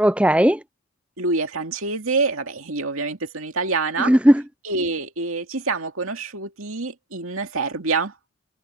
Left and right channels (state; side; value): normal; both; correlation 0.51